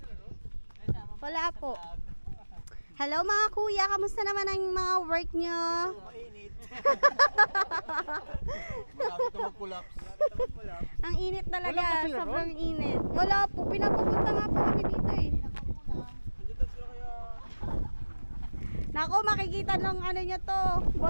Wala po. Hello mga kuya, kamusta naman ang mga work nyo? Mainit. Malapit na mag-collapse. Ang init talaga, sobrang init. Wala po, pinapapunta nga po kami dito eh. Nako, makikita ng ano nyo to,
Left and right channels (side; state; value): both; inverted; correlation -1.00